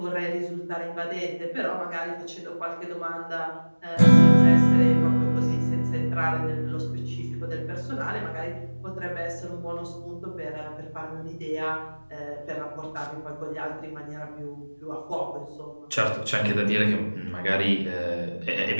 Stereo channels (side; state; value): both; inverted; correlation -1.00